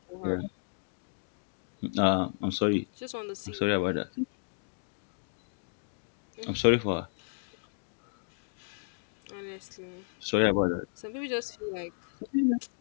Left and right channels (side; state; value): right; silent; digital silence